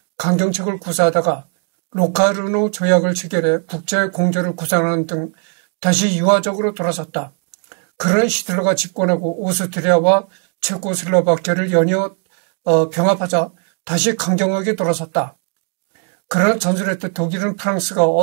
강경책을 구사하다가 로카르노 조약을 체결해 국제 공조를 구상하는 등 다시 유화적으로 돌아섰다. 그러나 히틀러가 집권하고 오스트리아와 체코슬로바키아를 연이어 병합하자 다시 강경하게 돌아섰다. 그러나 전술했던 독일은 프랑스가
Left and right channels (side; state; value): left; quieter; 39.9 dB